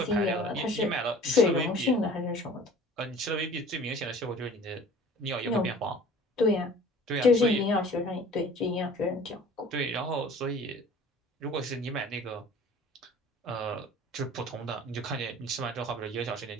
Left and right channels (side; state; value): both; normal; correlation 0.47